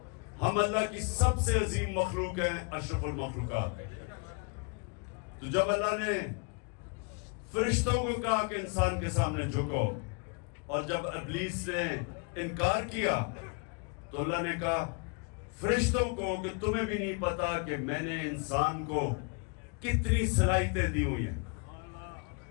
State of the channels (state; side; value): quieter; right; 34.7 dB